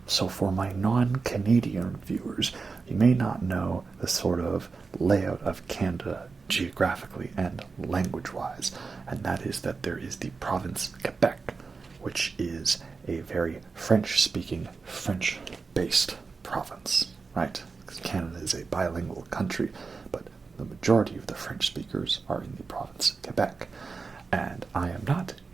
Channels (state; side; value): quieter; left; 4.5 dB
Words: So for my non-Canadian viewers, you may not know the sort of layout of Canada geographically and language-wise, and that is that there is the province Quebec, which is a very French-speaking, French-based province, right? Because Canada is a bilingual country, but the majority of the French speakers are in the province Quebec, and I am not